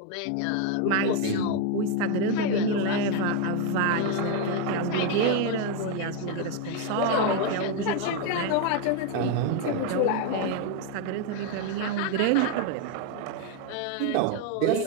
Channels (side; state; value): both; different; correlation 0.01